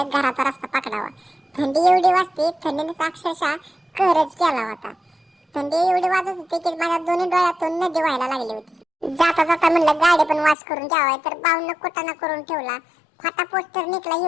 घराचा रस्ता पकडावा. थंडी एवढी वाजते, थंडीने अक्षरशः कहरच केला होता. थंडी एवढी वाजत होती की माझ्या दोन्ही डोळ्यातून नदी व्हायला लागली होती. जाता जाता म्हणलं गाडी पण वाश करून जावाय, तर बावनं कुटाणा करून ठेवला. फाटा पोस्टर निघला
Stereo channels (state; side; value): drops out; right; at 10.6 s